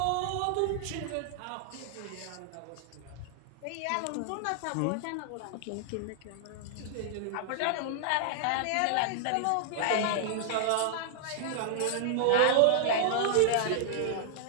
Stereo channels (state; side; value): different; both; correlation -0.01